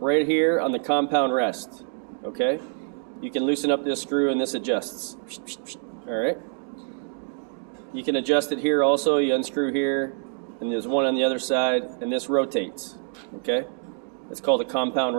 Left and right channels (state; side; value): silent; left; 59 dB below the other